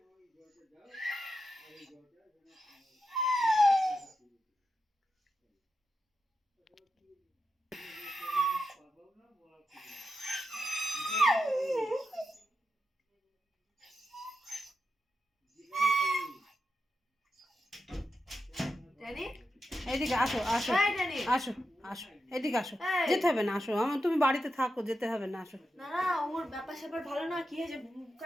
এদিকে আসো আসো আসো আসো, এদিকে আসো, যেতে হবে না, আসো আমার, তুমি বাড়িতে থাকো, যেতে হবে না, আসো। না না, ওর ব্যাপার স্যাপার ভালো না, কি হয়েছে?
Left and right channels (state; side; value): normal; both; correlation 0.87